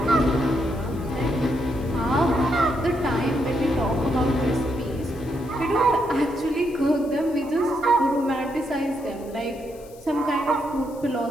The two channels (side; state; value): left; noise; hiss, 24 dB below the sound